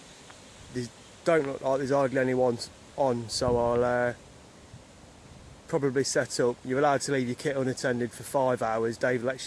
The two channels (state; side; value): identical; both; correlation 1.00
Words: These don't look like there's hardly anyone on, so I'll probably set up. You're allowed to leave your kit unattended for 5 hours. Dave